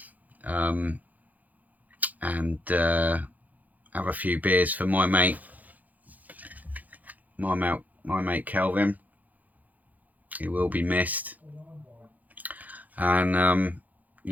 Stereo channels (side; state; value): left; late; 0.080 ms